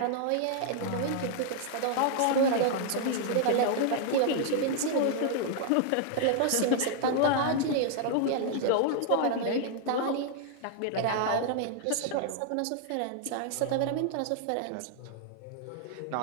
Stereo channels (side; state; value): both; different; correlation -0.01